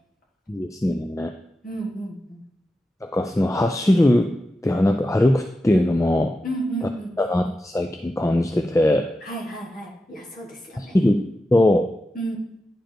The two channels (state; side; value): normal; both; correlation 0.91